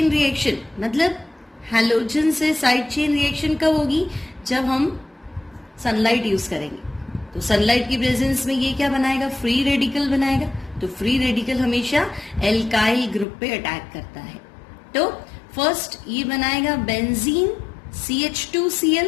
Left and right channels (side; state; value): right; drops out; at 13.2 s